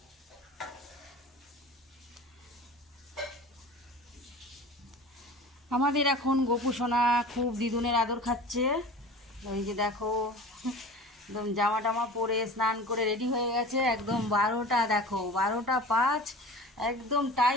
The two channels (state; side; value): normal; both; correlation 0.38